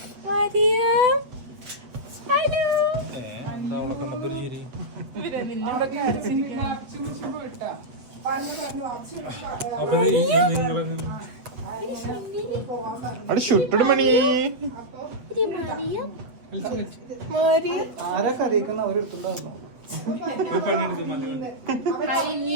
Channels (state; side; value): late; left; 8.0 ms